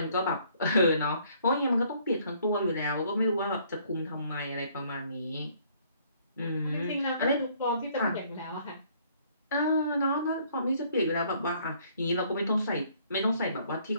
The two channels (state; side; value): inverted; both; correlation -0.63